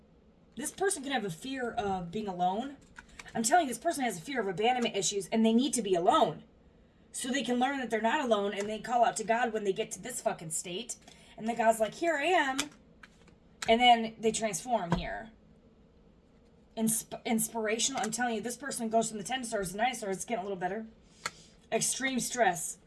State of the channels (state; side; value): identical; both; correlation 1.00